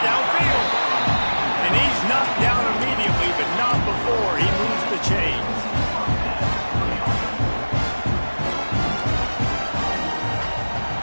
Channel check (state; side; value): inverted; both; correlation -1.00